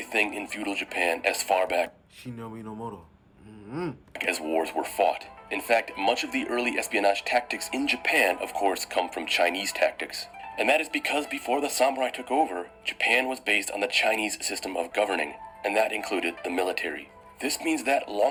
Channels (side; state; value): both; identical; correlation 1.00